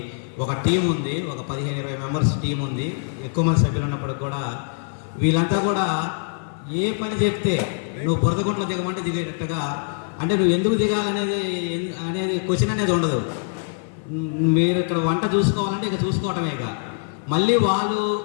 ఒక టీం ఉంది. ఒక 15-20 మెంబర్స్ టీం ఉంది. ఎక్కువ మంది సభ్యులు ఉన్నప్పటికి కూడా వీళ్ళంతా కూడా ఏ పని చెప్తే నువ్వు బురదగుంట్లో దిగమంటే దిగేటట్టుగా, అంటే నువ్వు ఎందుకు దిగాలనేది క్వశ్చన్ అనేది ఉండదు. మీరు ఇక్కడ వంట చూసుకోవాలంటే ఇక చూసుకోవటమే. ఇక మళ్ళీ వాళ్ళు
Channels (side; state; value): right; silent; 56 dB below the other